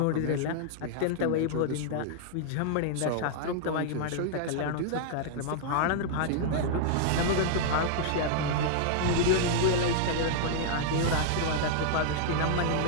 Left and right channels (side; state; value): both; different; correlation -0.01